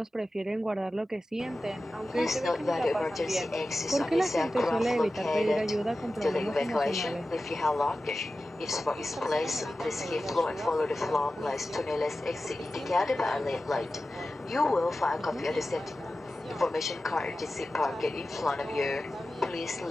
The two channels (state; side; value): normal; both; correlation 0.94